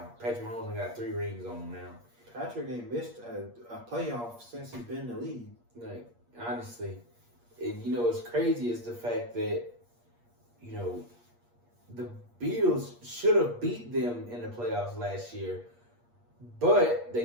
Patrick Mahomes only got 3 rings on him now. Patrick ain't missed a playoff since he's been in the league. Like, honestly, and what's crazy is the fact that the Bills should have beat them in the playoffs last year, but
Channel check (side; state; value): left; late; 8.5 ms